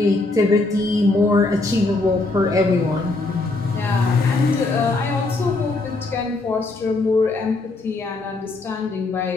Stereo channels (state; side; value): quieter; right; 3.2 dB